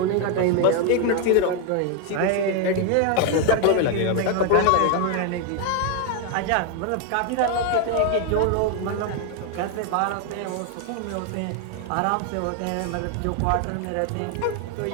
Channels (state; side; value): different; both; correlation 0.01